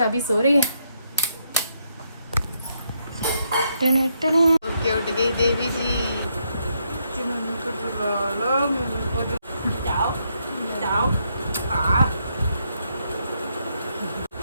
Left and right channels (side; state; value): both; inverted; correlation -0.77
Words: अभी सो रही है। ओके, उठ गई देवी जी।